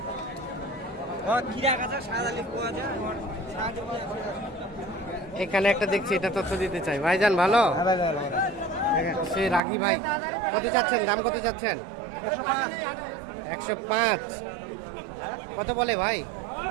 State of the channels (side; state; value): left; drops out; at 9.6 s